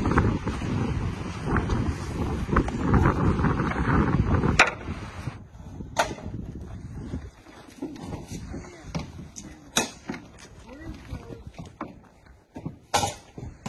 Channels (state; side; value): identical; both; correlation 1.00